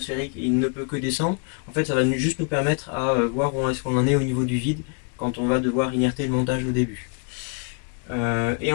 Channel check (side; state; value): right; quieter; 39.1 dB